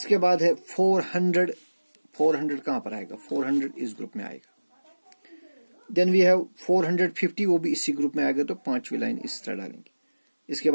बाद है 400, 400 कहां पर आएगा, 400 इस ग्रुप में आएगा। देन वी हैव 450, वो भी इसी ग्रुप में आएगा, तो 5वीं लाइन इस तरह डालेंगे। इसके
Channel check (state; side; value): inverted; both; correlation -1.00